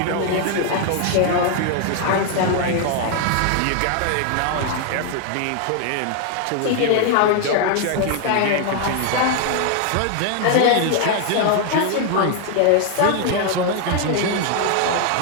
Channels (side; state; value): both; different; correlation 0.00